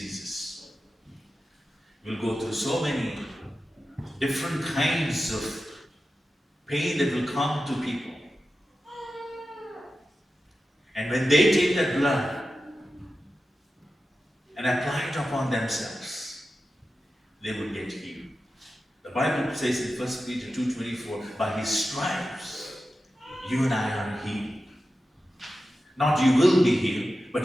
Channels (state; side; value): normal; both; correlation 0.92